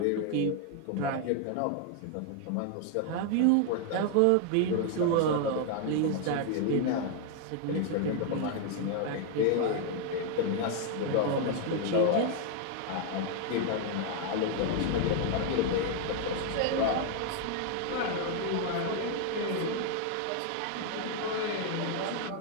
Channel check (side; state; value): both; different; correlation 0.00